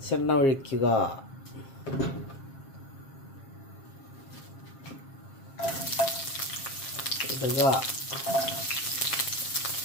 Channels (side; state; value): right; late; 7.4 ms